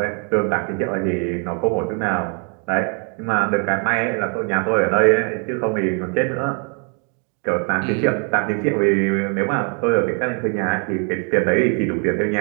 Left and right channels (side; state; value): left; quieter; 38.6 dB